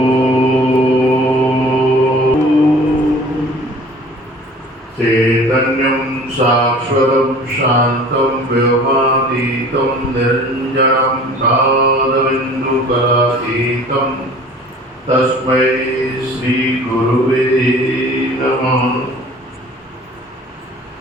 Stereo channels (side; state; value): both; normal; correlation 0.47